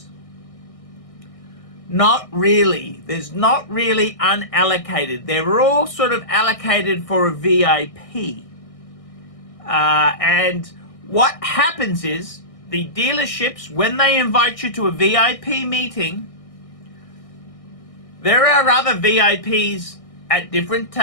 not really. There's not really unallocated. They're all sort of allocated for a VIP. And what happens is the dealerships, when they invite you to a VIP meeting, there are other VIPs at different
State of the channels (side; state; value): right; late; 1.6 ms